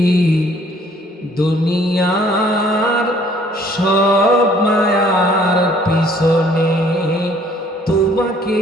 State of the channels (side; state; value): both; normal; correlation 0.59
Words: দুনিয়ার সব মায়ার পিছনে তোমাকে